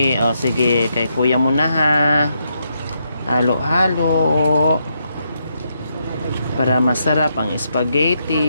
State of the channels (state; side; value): inverted; both; correlation -0.80